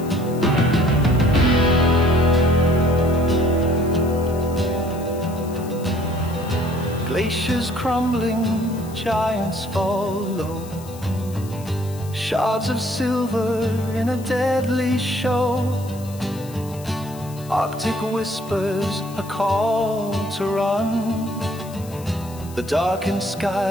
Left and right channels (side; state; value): left; noise; hiss, 20 dB below the sound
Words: Glaciers crumbling, giants fall low. Shards of silver in a deadly show. Arctic whispers, a call to run. The darkened